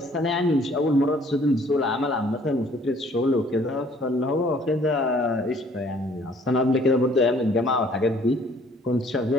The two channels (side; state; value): both; normal; correlation 0.59